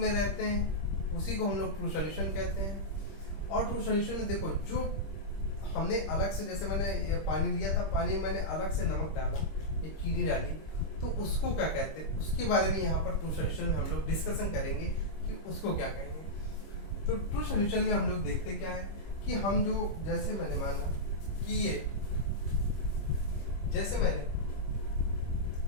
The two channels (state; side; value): late; right; 25 ms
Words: रहते हैं, उसी को हम लोग ट्रू सॉल्यूशन कहते हैं। और ट्रू सॉल्यूशन में देखो, जो हमने अलग से, जैसे मैंने ये पानी लिया था, पानी में मैंने अलग से नमक डाला, ये चीनी डाली, तो उसको क्या कहते हैं, उसके बारे में यहाँ पर ट्रू सॉल्यूशन में हम लोग डिस्कशन करेंगे कि उसको क्या कहेंगे। तो ट्रू सॉल्यूशन में हम लोग देखते क्या है कि हम जो, जैसे मैंने माना कि ये, जैसे मैंने